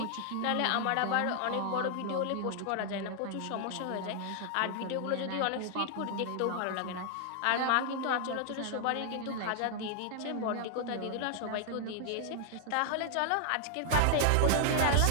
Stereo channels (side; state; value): both; different; correlation 0.00